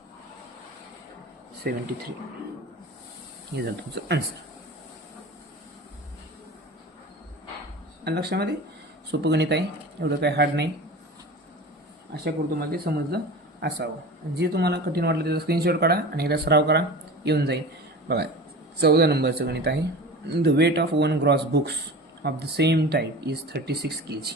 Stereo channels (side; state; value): both; normal; correlation 0.35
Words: 73. हे झालं तुमचं आन्सर. लक्षामध्ये सोपं गणित आहे, एवढं काय हार्ड नाही. आशा करतो तुम्हाला ते समजलं असावं. जे तुम्हाला कठीण वाटलं त्याचा स्क्रीनशॉट काढा आणि एकदा सराव करा, येऊन जाईल. बघा 14 नंबरचं गणित आहे. The weight of 1 gross books of the same type is 36 kg